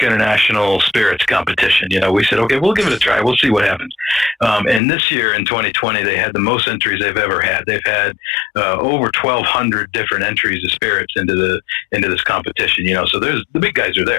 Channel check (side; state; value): right; drops out; at 4.8 s